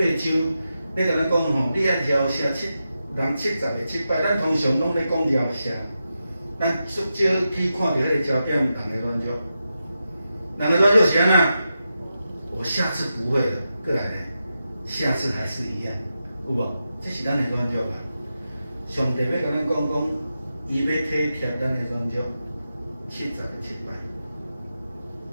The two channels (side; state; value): both; inverted; correlation -0.89